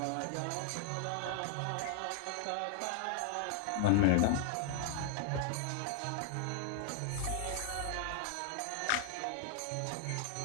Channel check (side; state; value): both; different; correlation 0.00